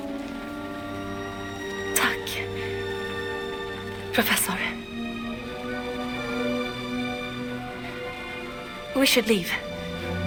Tack, Professor. We should leave.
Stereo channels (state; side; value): identical; both; correlation 1.00